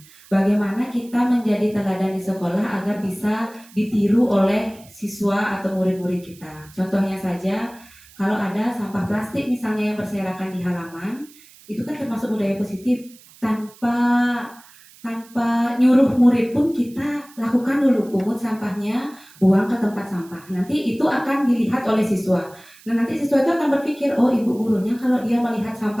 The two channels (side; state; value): right; noise; hiss, 24 dB below the sound